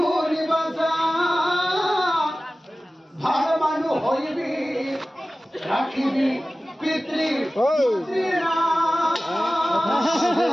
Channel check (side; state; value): both; normal; correlation 0.96